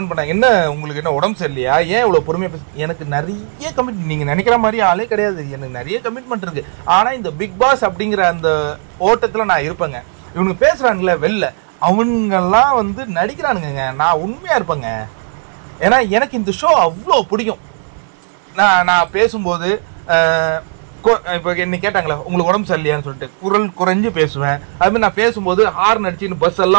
பண்ணாங்க, என்ன உங்களுக்கு என்ன உடம்பு சரியில்லையா, ஏன் இவ்வளோ பொறுமையாக பேச? எனக்கு நிறைய கமிட்மெண்ட், நீங்கள் நினைக்கிற மாதிரி ஆளே கிடையாது. எனக்கு நிறைய கமிட்மெண்ட் இருக்கு. ஆனால் இந்த பிக் பாஸ் அப்படிங்கிற அந்த ஓட்டத்தில் நான் இருப்பேங்க. இவனுங்க பேசுகிறானுங்களே வெளில, அவங்கெல்லாம் நடிக்கிறானுங்க. நான் உண்மையாக இருப்பேங்க. ஏன்னா எனக்கு இந்த ஷோ அவ்வளோ பிடிக்கும். நான் பேசும்போது இப்போ என்ன கேட்டாங்களே உங்களுக்கு உடம்பு சரியில்லையான்னு சொல்லிட்டு குரல் குறைஞ்சு பேசுவேன். அதுமாதிரி நான் பேசும்போது ஹார்ன் அடிச்சுன்னு பஸ்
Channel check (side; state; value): left; silent; 66 dB below the other